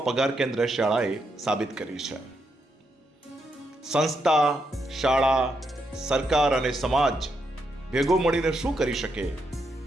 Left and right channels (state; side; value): normal; both; correlation 0.80